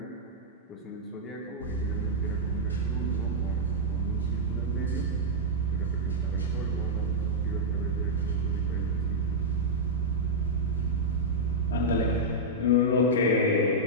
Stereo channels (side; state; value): both; normal; correlation -0.06